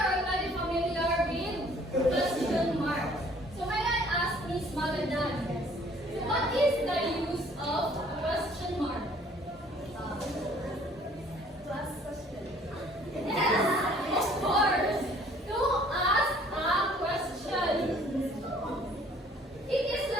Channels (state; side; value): normal; both; correlation 0.57